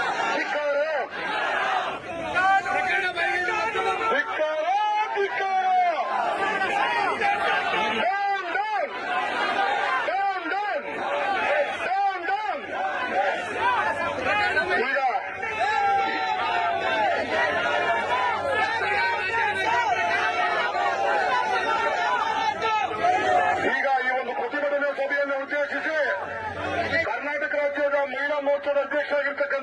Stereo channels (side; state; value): both; identical; correlation 1.00